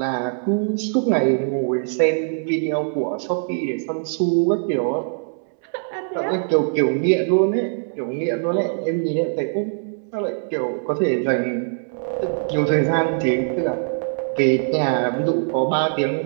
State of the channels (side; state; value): left; silent; 64 dB below the other